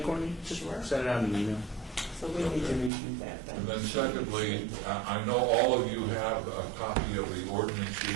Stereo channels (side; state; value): left; drops out; at 2.9 s